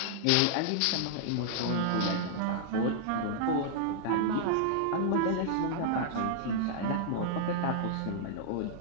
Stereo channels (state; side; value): different; both; correlation -0.01